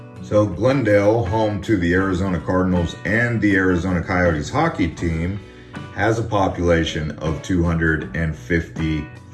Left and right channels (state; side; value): identical; both; correlation 1.00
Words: So Glendale, home to the Arizona Cardinals and the Arizona Coyotes Hockey team, has a population of